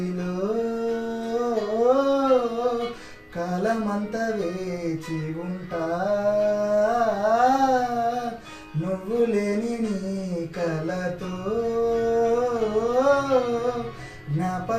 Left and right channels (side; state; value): both; identical; correlation 1.00